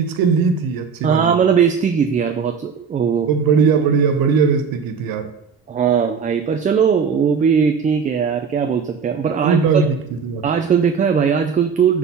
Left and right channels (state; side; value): quieter; left; 6.2 dB